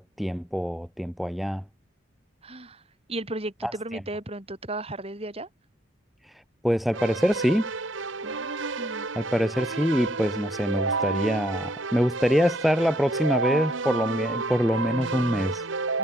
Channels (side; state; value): both; normal; correlation 0.70